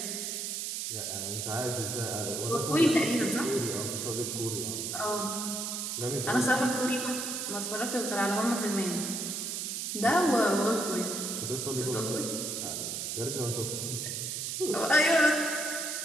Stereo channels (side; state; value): right; noise; hiss, 3 dB below the sound